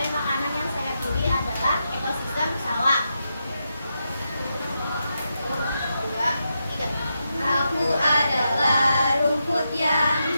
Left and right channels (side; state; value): both; inverted; correlation -0.85